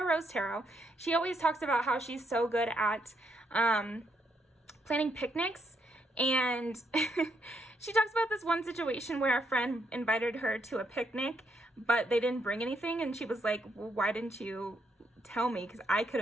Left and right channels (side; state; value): both; normal; correlation 0.76